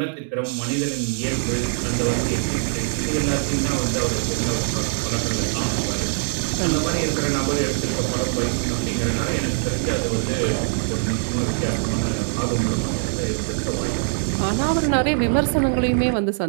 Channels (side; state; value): left; silent; digital silence